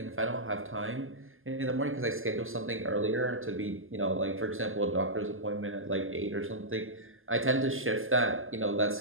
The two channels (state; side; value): late; left; 0.59 ms